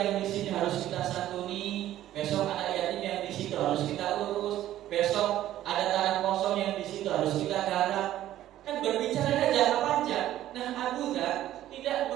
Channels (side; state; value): left; quieter; 13.2 dB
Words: di sini harus kita santuni. Besok anak yatim yang di situ harus kita urus. Besok ada tanah kosong yang di situ harus kita garap. Kan berbicara jangka panjang. Nah, Abu Dzar tidak